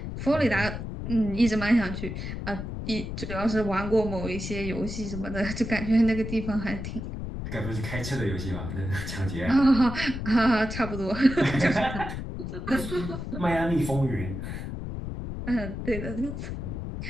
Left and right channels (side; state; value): left; noise; rumble, 6 dB below the sound